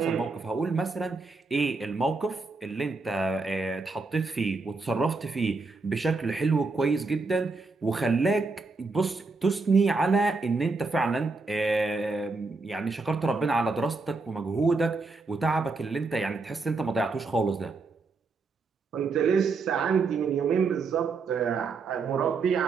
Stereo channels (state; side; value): quieter; left; 4.0 dB